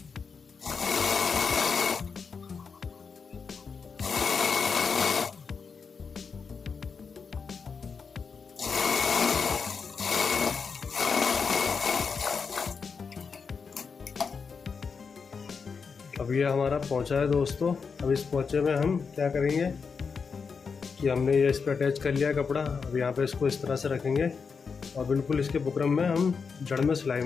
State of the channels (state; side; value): quieter; right; 5.5 dB